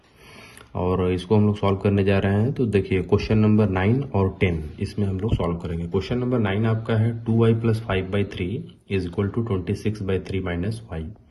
और इसको हम लोग सॉल्व करने जा रहे हैं। तो देखिए क्वेश्चन नंबर 9 और 10 इसमें हम लोग सॉल्व करेंगे। क्वेश्चन नंबर 9 आपका है 2y + 5/3 is equal to 26/3 minus y.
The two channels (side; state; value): both; identical; correlation 1.00